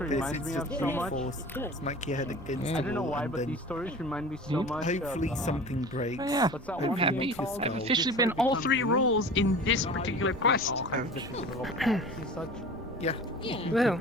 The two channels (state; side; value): normal; both; correlation 0.38